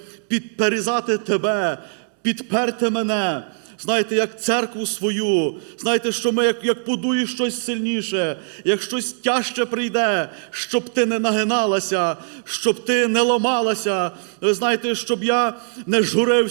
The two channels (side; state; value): left; silent; digital silence